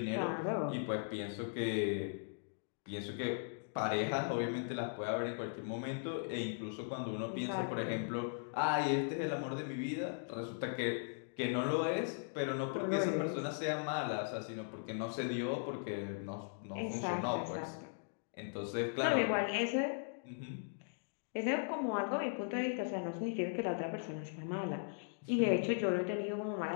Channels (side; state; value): right; silent; digital silence